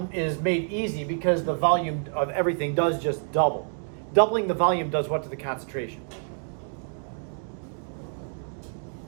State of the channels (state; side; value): silent; left; 60 dB below the other